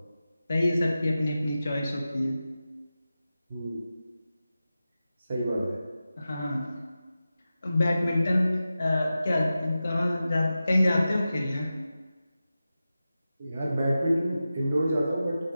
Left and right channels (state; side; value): inverted; both; correlation -0.93